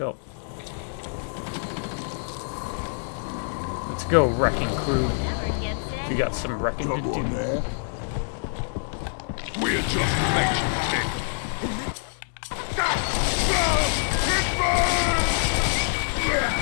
Let's go, wrecking crew. We got some wrecking to do. We're just making it.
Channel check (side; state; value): right; silent; digital silence